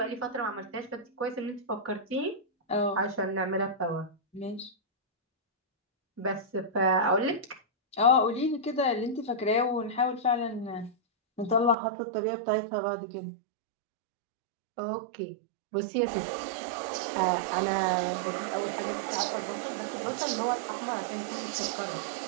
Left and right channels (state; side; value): drops out; left; at 11.8 s